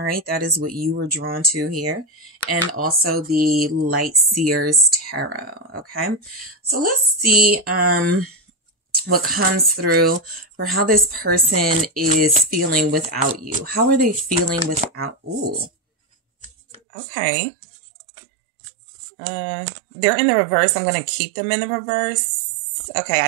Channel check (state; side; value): drops out; left; at 16.8 s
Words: right. That is what you were drawn to here. And also the Light Seers Tarot. Okay. So let's see, what comes through for how this person is feeling without you. How are they feeling without? Ooh. Okay. They're in the reverse. I'm going to keep them in the reverse. Okay.